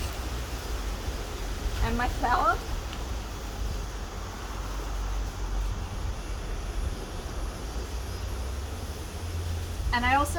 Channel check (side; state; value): both; identical; correlation 1.00